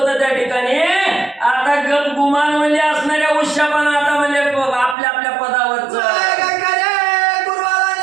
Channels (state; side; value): drops out; left; at 5.0 s